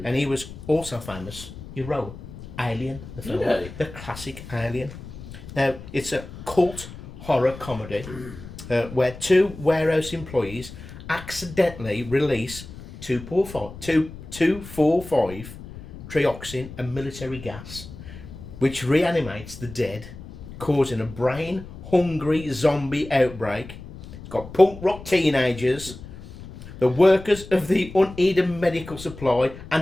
he was also famous. He wrote Alien, the film, Yeah. the classic Alien. Now, it's a cult horror comedy where two warehouse employees accidentally release 2,4,5 trioxin, a military gas, which reanimates the dead, causing a brain-hungry zombie outbreak. It's got punk rock teenagers, the workers of the uneaten medical supply,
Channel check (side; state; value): left; noise; rumble, 14 dB below the sound